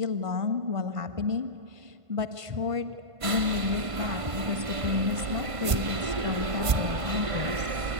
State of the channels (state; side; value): late; left; 1.5 ms